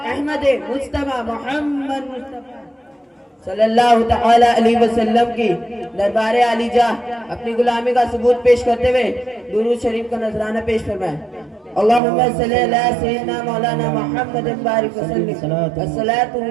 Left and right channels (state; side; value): drops out; left; at 12.0 s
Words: احمد مصطفیٰ محمد صلی اللہ تعالی علیہ وسلم کی دربار عالی جاہ اپنی غلامی کا ثبوت پیش کرتے ہوئے درود شریف کا نذرانہ پیش فرمائیں. اللہم صلی اللہ سیدنا مولانا محمد بارک وسلم الصلاۃ